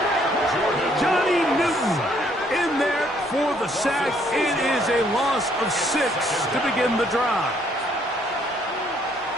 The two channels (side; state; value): both; normal; correlation 0.67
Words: Johnny Newton in there for the sack. It is a loss of 6 to begin the drive.